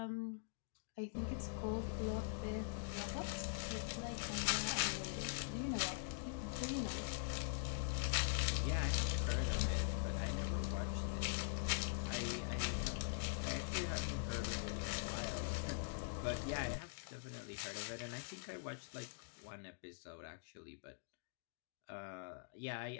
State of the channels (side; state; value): right; silent; digital silence